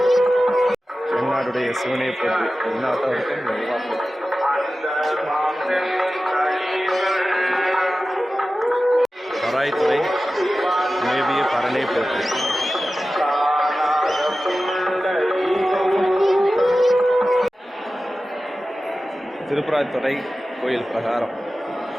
என்னாடுடைய சிவனையை போட்டு என்னாட்டவருக்கும் பராய்த்துறை மேவிய பரனை போட்டு. திருப்பராய்த்துறை கோயில் பிரகாரம்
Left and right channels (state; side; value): normal; both; correlation 0.95